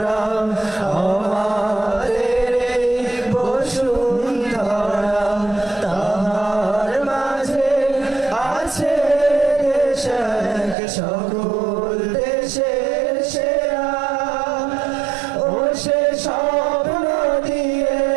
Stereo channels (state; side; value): drops out; left; at 10.8 s